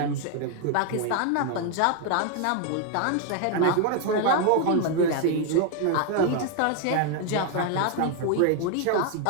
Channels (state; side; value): different; both; correlation 0.01